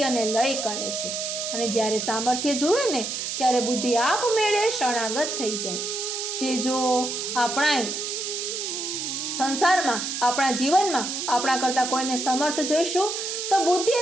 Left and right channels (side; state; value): right; noise; hiss, 4 dB below the sound